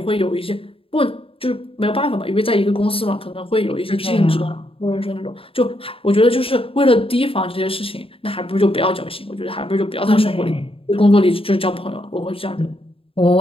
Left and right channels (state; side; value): late; right; 0.27 ms